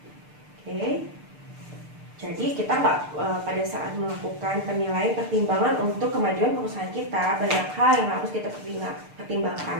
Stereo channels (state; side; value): late; left; 6.7 ms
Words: Oke. Jadi kita pada saat melakukan penilaian pertimbangan untuk kemajuan perusahaan kita, banyak hal yang harus kita pertimbangkan.